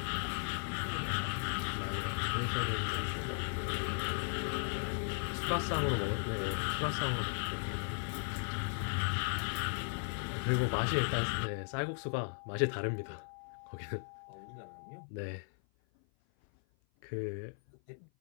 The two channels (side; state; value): right; silent; 53 dB below the other